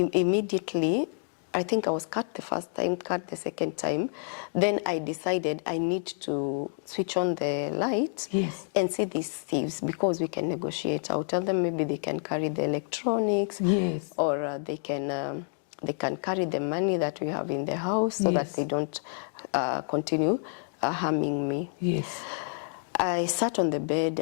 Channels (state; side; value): silent; right; digital silence